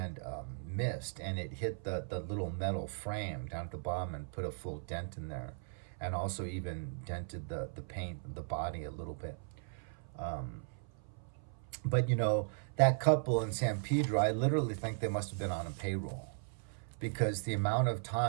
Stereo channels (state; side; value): silent; left; 53 dB below the other